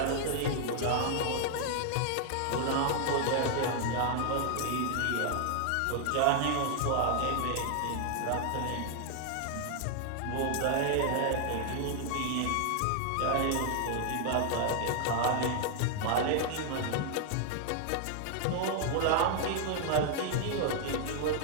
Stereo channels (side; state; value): both; different; correlation 0.00